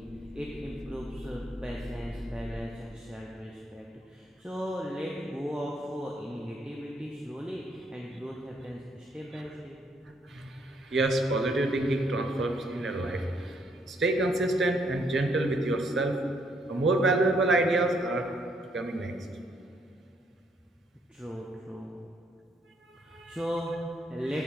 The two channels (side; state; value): both; normal; correlation 0.71